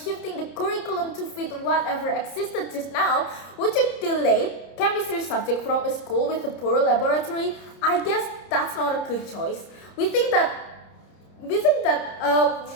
the curriculum to fit whatever existed just now, would you delete chemistry subject from a school with a poor laboratory? I guess that's not a good choice. We think that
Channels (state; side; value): late; right; 30 ms